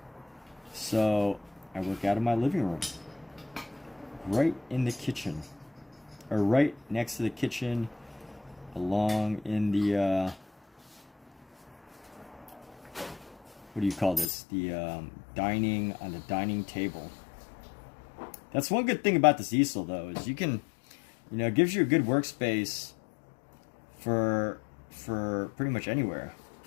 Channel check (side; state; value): right; drops out; at 14.3 s